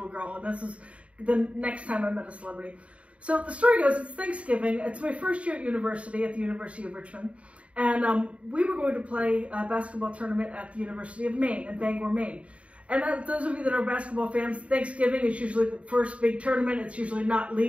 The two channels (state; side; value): late; left; 0.064 ms